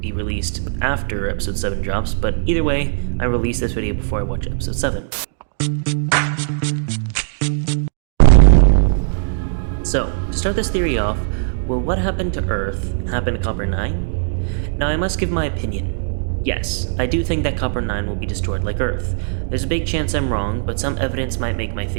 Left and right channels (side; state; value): left; silent; digital silence